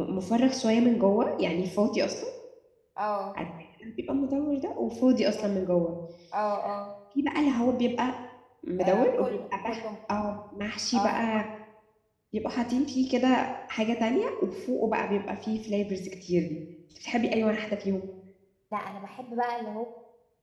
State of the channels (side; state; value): both; identical; correlation 1.00